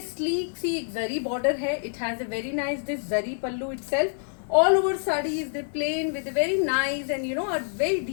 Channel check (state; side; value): silent; right; digital silence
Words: sleek सी एक जरी border है. It has a very nice this zari pallu itself. All over sari is the plain with a very nice and a very